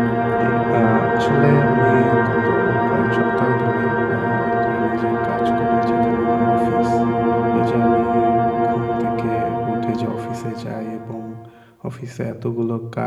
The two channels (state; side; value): identical; both; correlation 1.00